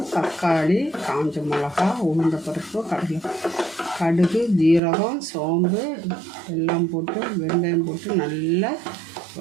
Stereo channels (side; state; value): left; drops out; at 4.8 s